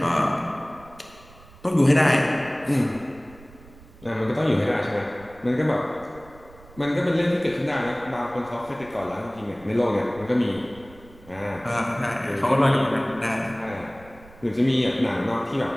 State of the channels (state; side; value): noise; right; rumble, 22 dB below the sound